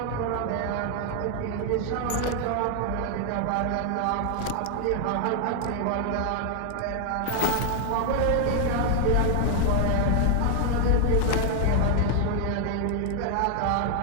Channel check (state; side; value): different; both; correlation 0.00